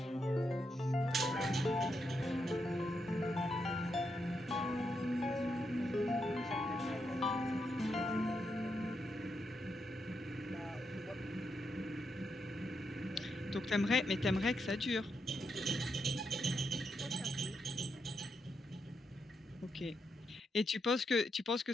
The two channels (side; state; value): both; normal; correlation 0.82